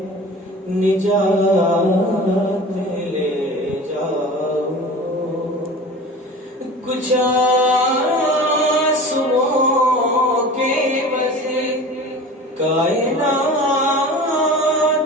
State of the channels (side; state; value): both; normal; correlation 0.37